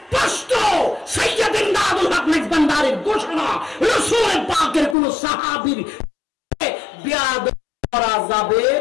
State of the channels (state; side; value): drops out; right; at 5.0 s